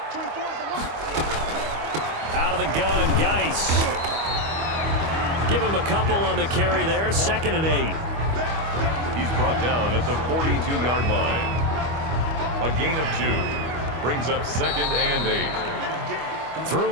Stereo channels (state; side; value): late; left; 25 ms